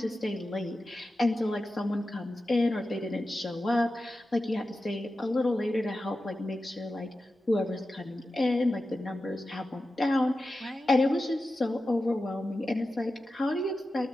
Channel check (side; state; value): both; normal; correlation 0.93